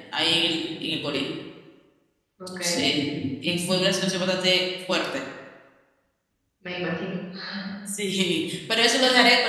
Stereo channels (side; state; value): both; identical; correlation 1.00